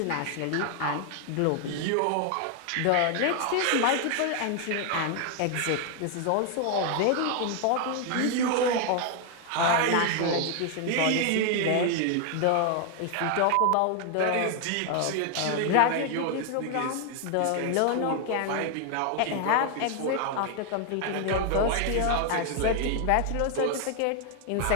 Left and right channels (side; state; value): both; different; correlation 0.00